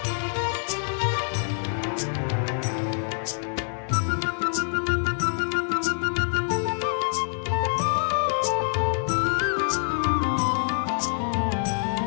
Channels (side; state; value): right; silent; 59 dB below the other